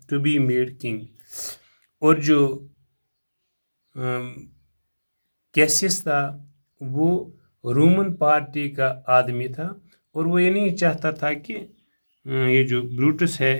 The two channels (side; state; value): both; inverted; correlation -1.00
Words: made king اور جو کیسیس تھا وہ رومن پارٹی کا آدمی تھا اور وہ یہ نہیں چاہتا تھا کہ یہ جو بروٹس ہے